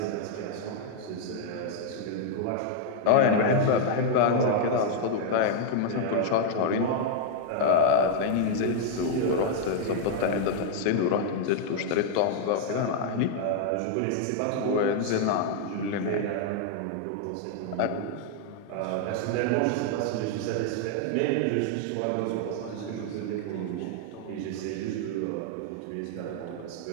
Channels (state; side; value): different; both; correlation 0.00